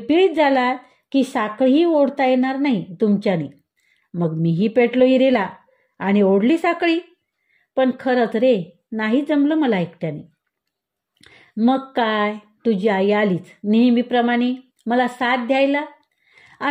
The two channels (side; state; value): both; identical; correlation 1.00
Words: झाला की साखळीही ओढता येणार नाही तुमच्याने. मग मीही पेटलो इरेला आणि ओढली साखळी. पण खरंच रे नाही जमलं मला एकट्याने. मग काय तुझी आई आलीच नेहमीप्रमाणे मला साथ द्यायला.